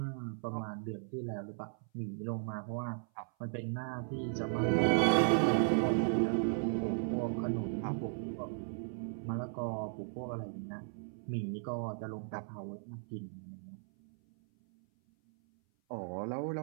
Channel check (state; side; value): silent; left; 54 dB below the other